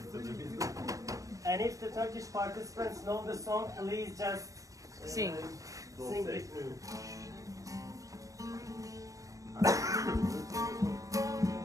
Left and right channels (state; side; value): late; left; 0.16 ms